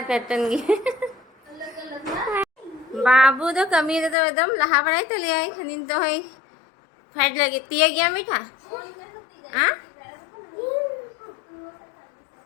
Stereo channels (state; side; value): drops out; right; at 4.2 s